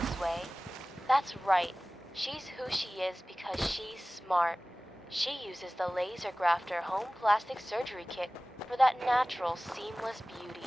way. That's right. She's who she is because she's smart. She uses the laser grafter home plastic surgery kit for that natural, seamless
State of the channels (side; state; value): both; normal; correlation 0.98